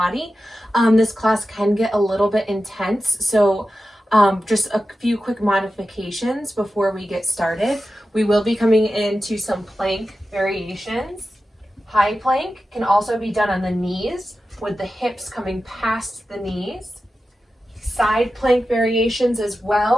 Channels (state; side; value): normal; both; correlation 0.93